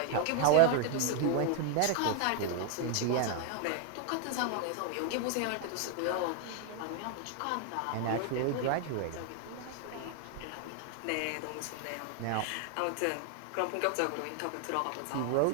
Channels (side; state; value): both; different; correlation 0.00